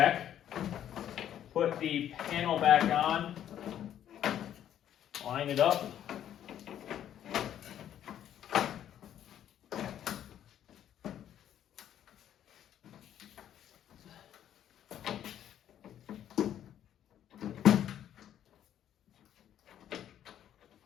Put the panel back on, line it up.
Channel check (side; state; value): right; quieter; 10.6 dB